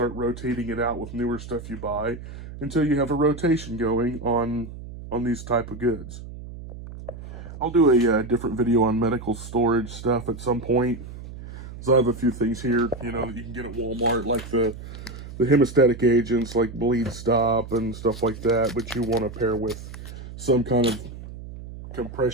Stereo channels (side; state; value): right; noise; hum, 12 dB below the sound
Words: rotating it out with newer stuff you buy until you have a rotation going on these type of goods. I'll do a different video on medical storage stuff at some point. So I have a few things here, you know, that you can get at Walmart, like the hemostatic agents like bleed stop and stuff like that, but you want to pair with some kind of